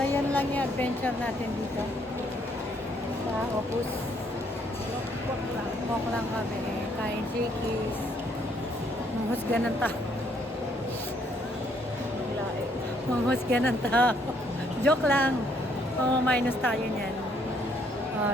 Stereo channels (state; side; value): normal; both; correlation 0.68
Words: yan lang yung adventure natin dito. Sa Opus. Walk lang kami. Kain Shakey's. Manghusga ng tao. Manghusga ng tao. Joke lang. Minus tayo niyan.